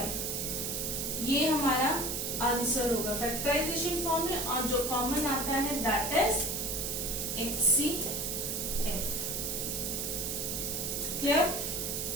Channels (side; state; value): right; noise; hiss, 2 dB below the sound